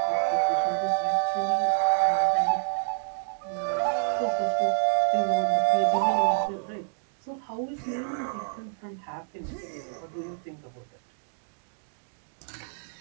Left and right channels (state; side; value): silent; left; digital silence